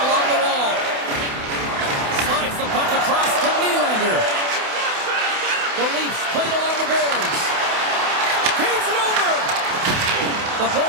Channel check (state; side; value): late; left; 28 ms